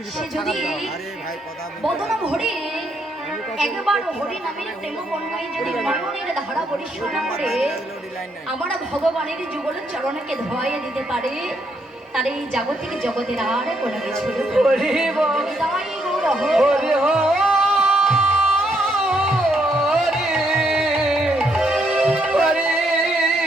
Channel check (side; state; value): both; normal; correlation 0.74